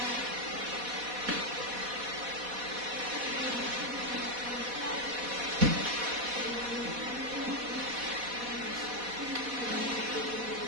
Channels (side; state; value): left; late; 4.1 ms